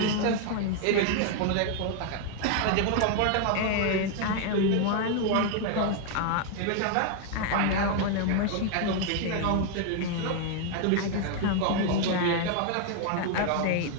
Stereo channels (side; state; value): both; different; correlation 0.00